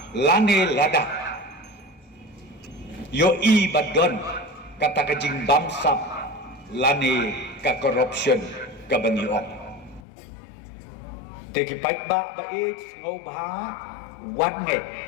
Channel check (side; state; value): right; drops out; at 10.0 s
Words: lane lada yo i badon kata kajing bamsap lane ka corruption kabangi ong teki paik ba ngau bha wat nge